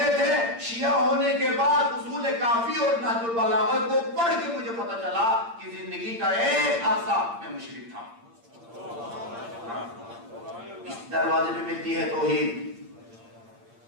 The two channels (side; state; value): left; late; 8.7 ms